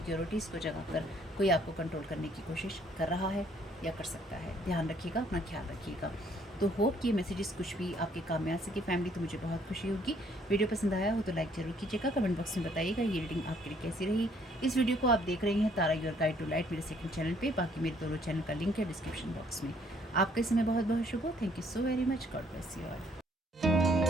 को जगा कर कोई आपको कंट्रोल करने की कोशिश कर रहा है या कर सकता है। ध्यान रखिएगा, अपना ख्याल रखिएगा। तो होप कि ये मैसेजेस कुछ भी आपके काम में आ सके फैमिली, तो मुझे बहुत खुशी होगी। वीडियो पसंद आया हो तो लाइक जरूर कीजिएगा, कमेंट बॉक्स में बताइएगा ये रीडिंग आपके लिए कैसी रही। इस वीडियो को आप देख रहे हैं तारा योर गाइड टू लाइट मेरे सेकंड चैनल पे, बाकी मेरे दोनों चैनल का लिंक है डिस्क्रिप्शन बॉक्स में। आपका समय बहुत बहुत शुभ हो। Thank you so very much. God bless you all.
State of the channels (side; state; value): both; normal; correlation 0.64